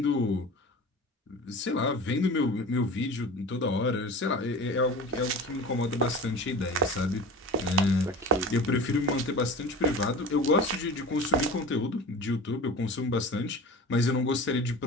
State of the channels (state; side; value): normal; both; correlation 0.34